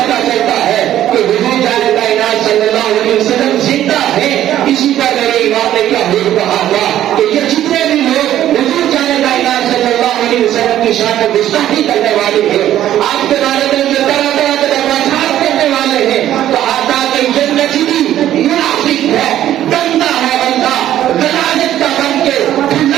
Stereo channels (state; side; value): quieter; left; 12.2 dB